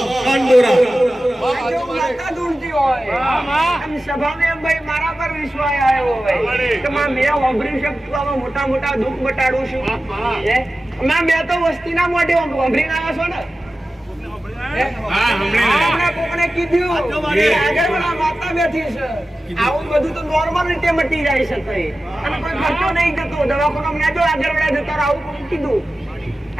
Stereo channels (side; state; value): both; normal; correlation 0.95